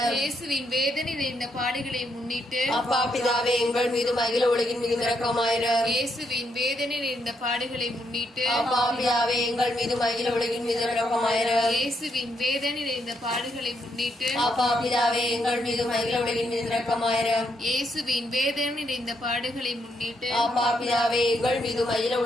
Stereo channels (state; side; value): normal; both; correlation 0.77